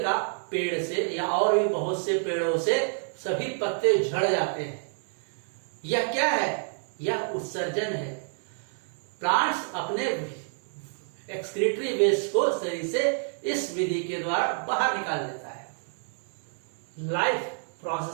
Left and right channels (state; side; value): silent; left; 59 dB below the other